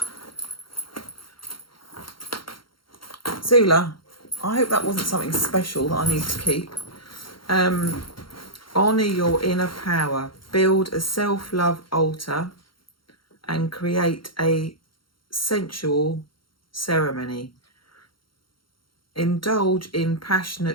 Zula, I hope that wasn't something special that I need to keep. Honour your inner power. Build a self-love altar and create a sensual ceremony. Indulge in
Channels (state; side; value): late; right; 0.73 ms